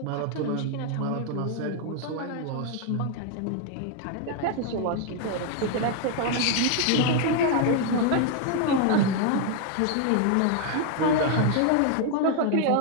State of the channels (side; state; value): both; different; correlation 0.01